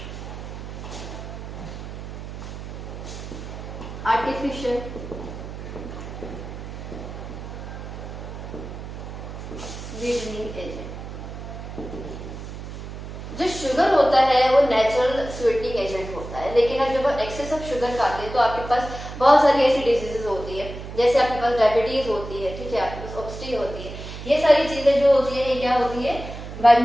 आर्टिफिशियल स्वीटनिंग एजेंट, जो शुगर होता है वो नेचुरल स्वीटनिंग एजेंट होता है, लेकिन अब जब आप एक्सेस ऑफ शुगर खाते हैं तो आपके पास बहुत सारी ऐसी डिजीजेस होती है, जैसे आपके पास डायबिटीज होती है, ठीक है, आपके पास ओबेसिटी होती है। ये सारी चीजें जो होती है ये क्या होती है? By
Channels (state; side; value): noise; right; hum, 10 dB below the sound